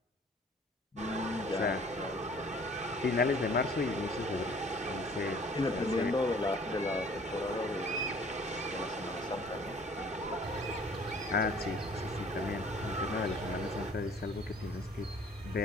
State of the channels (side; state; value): both; normal; correlation 0.53